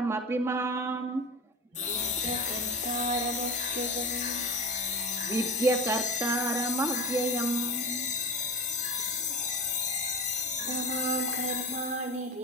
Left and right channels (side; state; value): both; normal; correlation 0.29